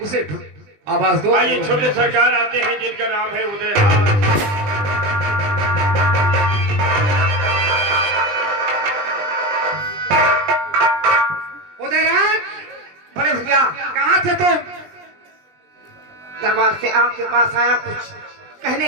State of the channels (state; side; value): late; left; 20 ms